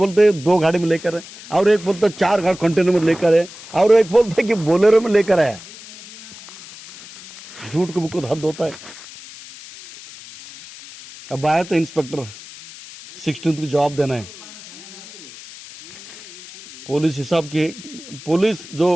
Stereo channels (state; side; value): noise; left; hiss, 17 dB below the sound